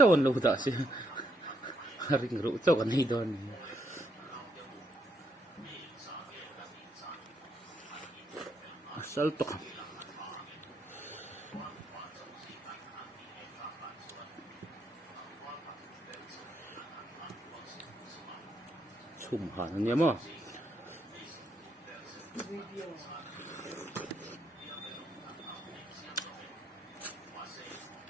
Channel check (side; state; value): both; normal; correlation 0.76